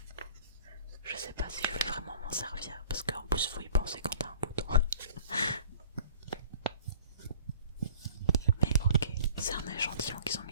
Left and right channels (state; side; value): inverted; both; correlation -0.49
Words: m'en servir, parce qu'en plus faut y penser quand t'as un bouton. Mais ok, c'est un échantillon qu'ils ont